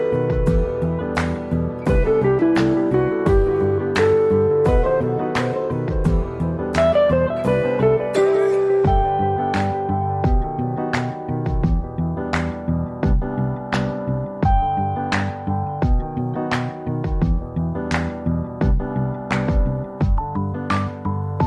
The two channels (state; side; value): identical; both; correlation 1.00